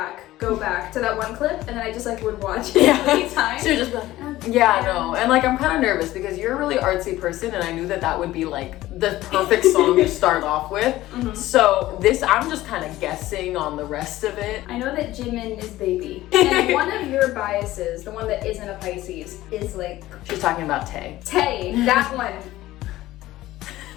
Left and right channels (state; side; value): quieter; right; 16.1 dB